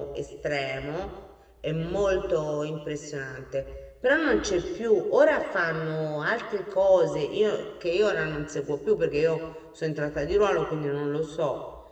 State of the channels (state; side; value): identical; both; correlation 1.00